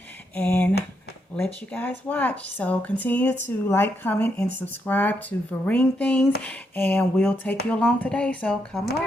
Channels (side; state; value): both; normal; correlation 0.79